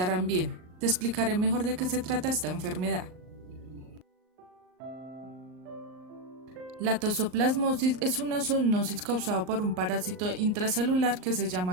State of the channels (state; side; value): late; left; 38 ms